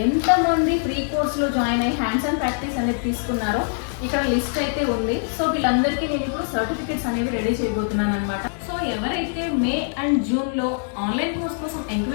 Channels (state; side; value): silent; right; 63 dB below the other